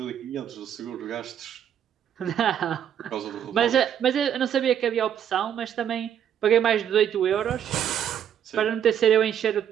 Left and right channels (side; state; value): left; quieter; 9.5 dB